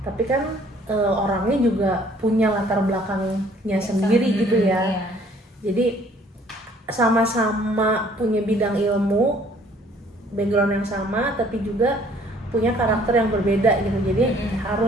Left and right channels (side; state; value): both; normal; correlation 0.58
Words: Tapi kan orangnya juga punya latar belakangnya sendiri gitu ya. Jadi sama-sama punya bidang ilmu, background yang sama, tapi juga punya karakter yang berbeda gitu. Jadi